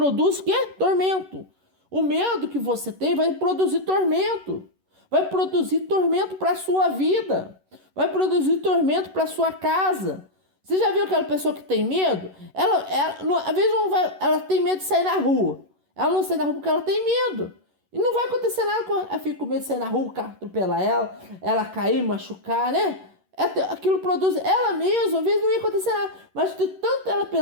o quê? Tormento. O medo que você tem vai produzir tormento. Vai produzir tormento para a sua vida. Vai produzir tormento para a sua casa. Você já viu aquela pessoa que tem medo? Às vezes ela tem medo de sair na rua. Ela não sai na rua porque ela tem medo. E não vai acontecer nada com ela. Ela fica com medo de sair na rua, o carro atropelar ela cair, machucar, né? Aquilo produz ela mesma, às vezes não ia acontecer nada. Mas de tanto ela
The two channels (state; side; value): late; left; 11 ms